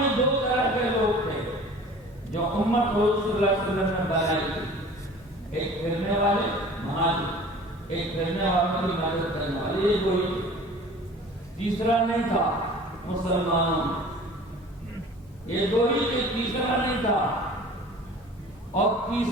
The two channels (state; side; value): normal; both; correlation 0.44